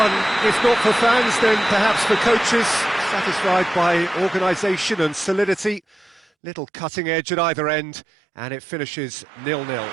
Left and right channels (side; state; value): left; drops out; at 6.2 s